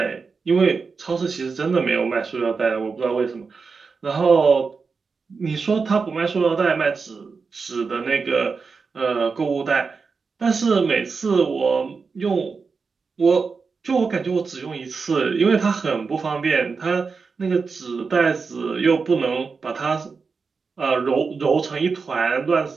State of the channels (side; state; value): left; quieter; 4.9 dB